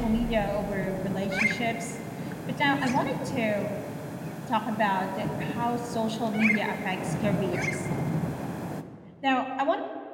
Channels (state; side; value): identical; both; correlation 1.00